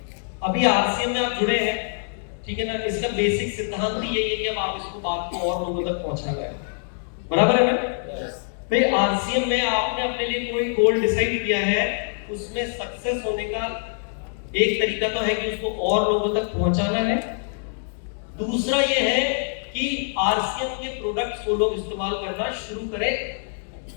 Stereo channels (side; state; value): right; silent; 62 dB below the other